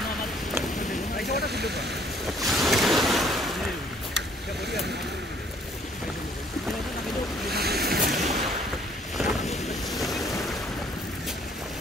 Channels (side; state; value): both; normal; correlation 0.61